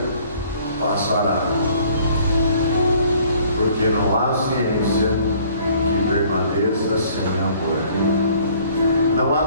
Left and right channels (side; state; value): both; inverted; correlation -0.57